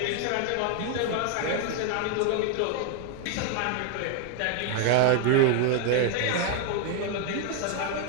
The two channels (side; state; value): both; different; correlation 0.00